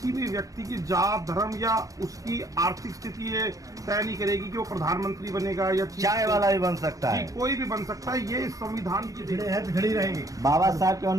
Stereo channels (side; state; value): left; late; 0.17 ms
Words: भी व्यक्ति की जात धर्म या उसकी आर्थिक स्थिति ये तय नहीं करेगी कि वो प्रधानमंत्री बनेगा या चाय वाला भी बन सकता है, कोई भी बन सकता है। ये इस संविधान की पिछड़ी रहेगी। बाबा साहब के